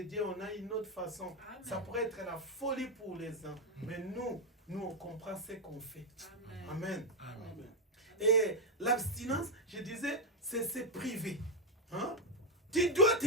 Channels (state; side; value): normal; both; correlation 0.01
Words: on a une autre façon. Amen. Ça pourrait être la folie pour les uns. Mais nous, on comprend ce qu'on fait. Amen. Amen. Et l'abstinence, je disais, c'est privé. Hein? Tu dois